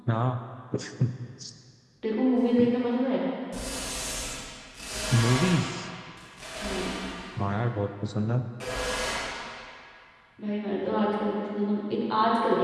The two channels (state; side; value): identical; both; correlation 1.00